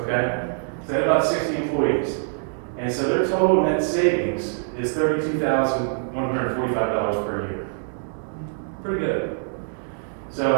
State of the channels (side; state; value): left; silent; digital silence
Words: okay? So they have about 60 employees. And so their total net savings is $32,145 per year. Pretty good.